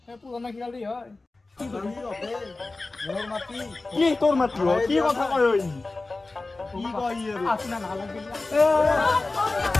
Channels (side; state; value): right; quieter; 3.3 dB